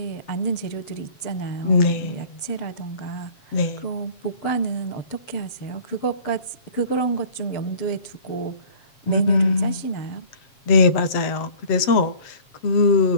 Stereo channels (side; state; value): right; late; 7.4 ms